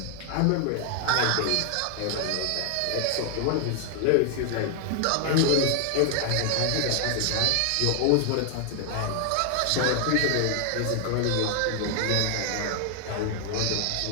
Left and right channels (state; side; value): different; both; correlation 0.00